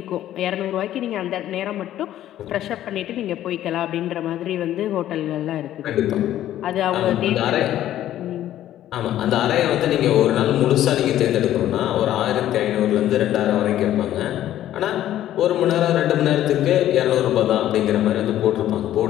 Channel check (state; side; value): quieter; right; 12.6 dB